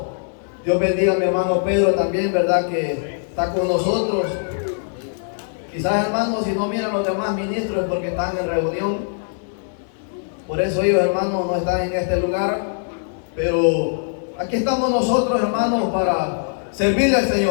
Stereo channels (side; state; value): right; silent; 65 dB below the other